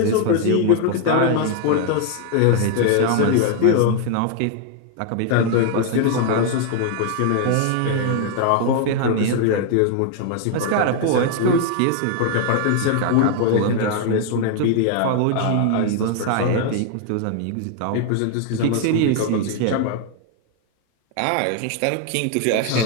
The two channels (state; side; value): different; both; correlation 0.00